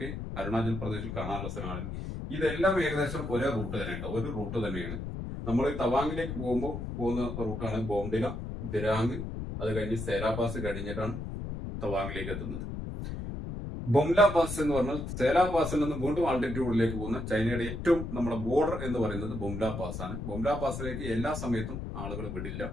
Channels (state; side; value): noise; left; rumble, 6 dB below the sound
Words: അരുണാചൽ പ്രദേശിൽ കാണാനുള്ള സ്ഥലമാണ്. ഇതെല്ലാം ഏകദേശം ഒരേ റൂട്ട് തന്നെയുണ്ട്, ഒരു റൂട്ട് തന്നെയാണ്. നമ്മൾ തവാങ്ങിലേക്ക് പോകുന്ന റൂട്ടാണ് ബോംഡില, ദിരാങ്, അത് കഴിഞ്ഞ് സേരാ പാസ് കഴിഞ്ഞിട്ടാണ് തവാങ്ങിലേക്ക് എത്തുന്നത്. ബൊംല പാസ് എന്ന് പറഞ്ഞാൽ സേരാ പാസിൽ നിന്ന് വീണ്ടും ആൾട്ടിറ്റ്യൂഡിലേക്ക് പോകുന്ന ചൈനയുടെ ഏറ്റവും നമ്മുടെ ബോർഡർ എന്ന് പറയുന്നത് ബൊംല പാസ് ആണ്. ബൊംല പാസിലേക്ക് എല്ലാ സമയത്തും ആളുകൾ വിടില്ല.